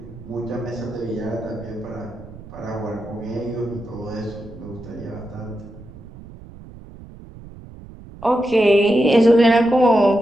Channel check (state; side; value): noise; right; rumble, 18 dB below the sound